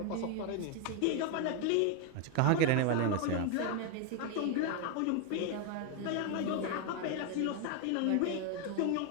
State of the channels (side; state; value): both; different; correlation 0.01